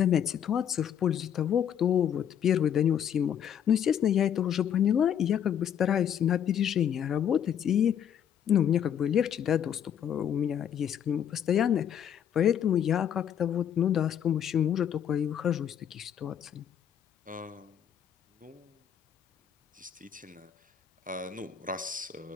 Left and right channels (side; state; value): right; quieter; 9.1 dB